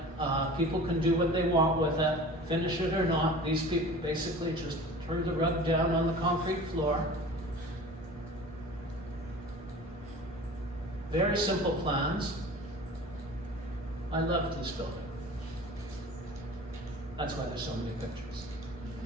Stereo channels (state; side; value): normal; both; correlation 0.40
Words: People can do what they want with it. Finish it or not, these people basically just threw the rug down on the concrete floor. Very simple plans. I loved this building. That's why there's so many pictures.